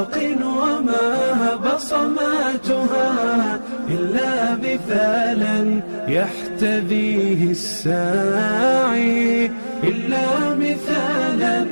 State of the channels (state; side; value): inverted; both; correlation -1.00